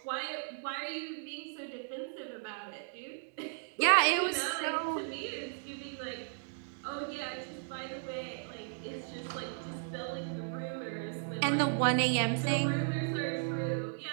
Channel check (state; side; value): silent; left; digital silence